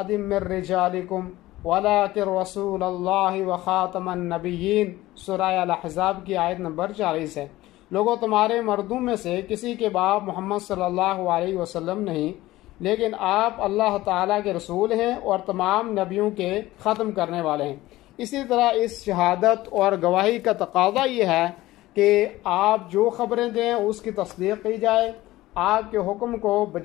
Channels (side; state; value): right; quieter; 17.1 dB